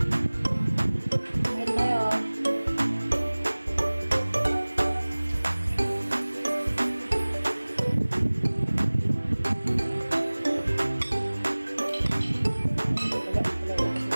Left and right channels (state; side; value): inverted; both; correlation -1.00